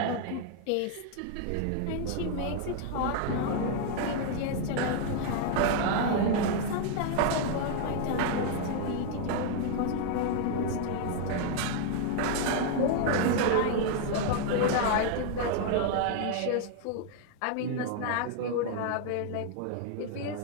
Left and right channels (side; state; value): both; different; correlation 0.00